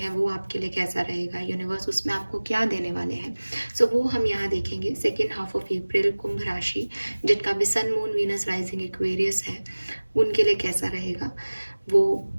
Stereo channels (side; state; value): both; inverted; correlation -1.00